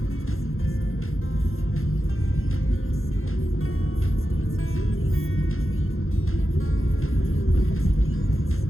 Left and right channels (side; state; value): right; late; 0.61 ms